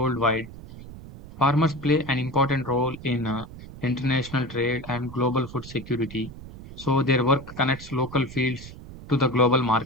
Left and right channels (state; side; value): noise; right; rumble, 15 dB below the sound